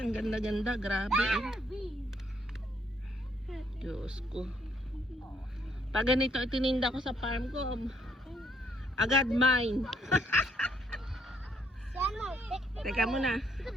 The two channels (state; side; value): normal; both; correlation 0.70